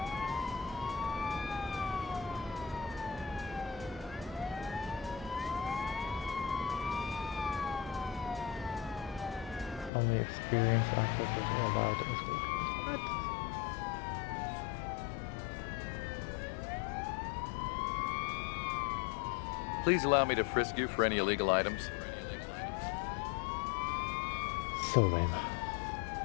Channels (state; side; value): drops out; right; at 9.9 s